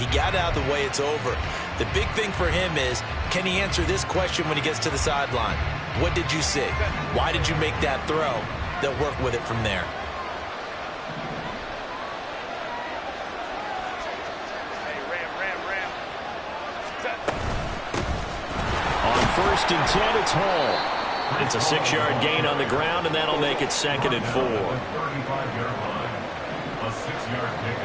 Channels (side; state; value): both; identical; correlation 1.00